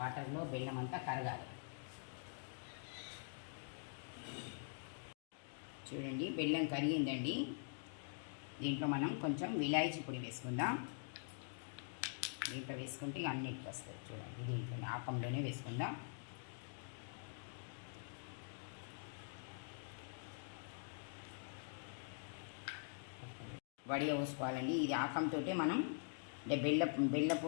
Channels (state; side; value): silent; right; digital silence